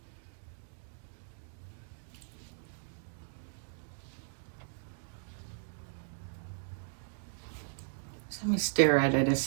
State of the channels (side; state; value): left; silent; digital silence